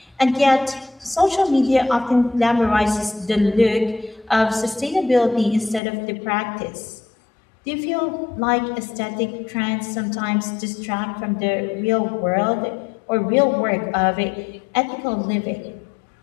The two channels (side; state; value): right; drops out; at 5.8 s